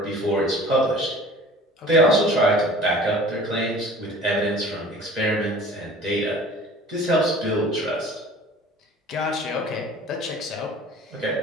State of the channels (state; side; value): normal; both; correlation 0.45